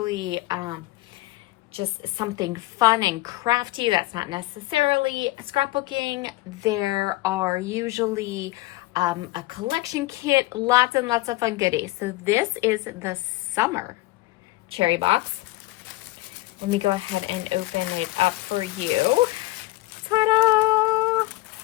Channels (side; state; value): right; quieter; 19.2 dB